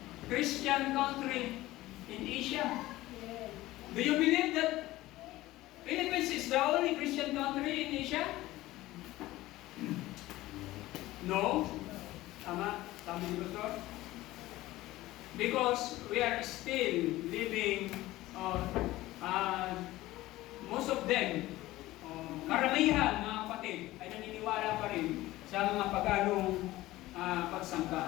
Christian country in Asia. Do you believe that Philippines is the only Christian country in Asia? No? Tama? Tama ni Pastor? Because we are still living, most of them, karamihan mga kapatid, ay naniniwala pa rin sa mga paganong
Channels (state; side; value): quieter; right; 17.2 dB